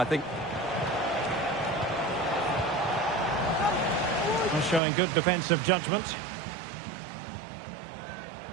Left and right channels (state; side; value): drops out; left; at 4.8 s